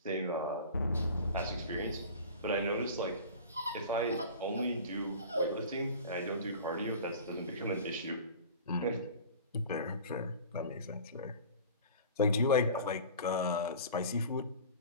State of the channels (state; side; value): inverted; both; correlation -0.39